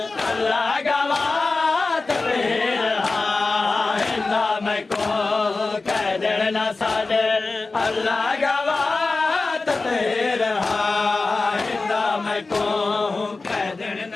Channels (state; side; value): quieter; right; 3.7 dB